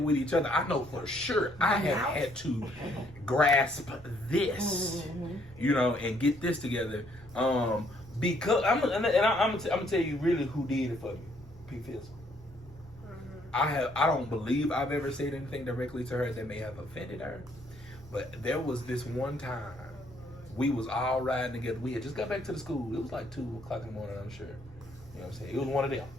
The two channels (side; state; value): both; normal; correlation 0.67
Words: with each other. I know for sure. I have had to grasp this, you know, and get this together. Because I'm gonna tell you really who did it for me. P. Fizzle. I don't believe I've ever said anything directly to her that may have offended her, but there was this one time we was all riding together. We had just got back to the school. It was like 2:00 in the morning, I'm sure. You know what I'm saying? It was one of them.